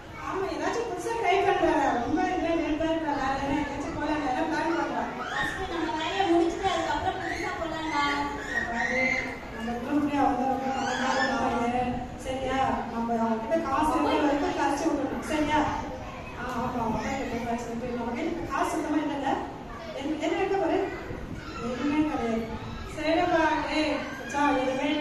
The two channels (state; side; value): identical; both; correlation 1.00